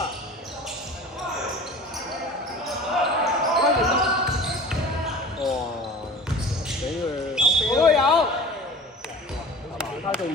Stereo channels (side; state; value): both; normal; correlation 0.39